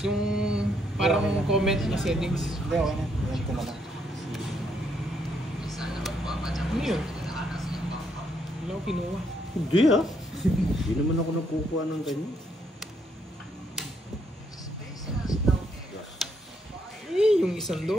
Yung parang comment na settings. Hindi, okay na. Yan ko na lang. Ano yun? Wala ko kinuha. Hindi ah. Hindi naman ako nagkukuha ng ganyan. Eh, yung isang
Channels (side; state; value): both; normal; correlation 0.73